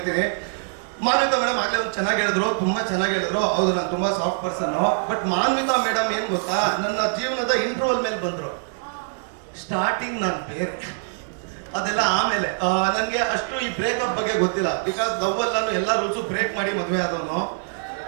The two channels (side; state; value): left; silent; digital silence